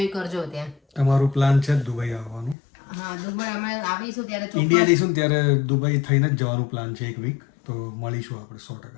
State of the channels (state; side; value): drops out; right; at 2.6 s